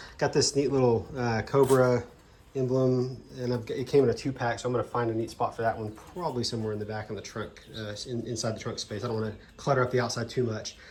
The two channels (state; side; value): identical; both; correlation 1.00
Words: got this neat little Cobra emblem, and it came in a 2-pack, so I'm going to find a neat spot for that one, probably somewhere in the back of the trunk, inside the trunk space. I don't want to clutter up the outside too much.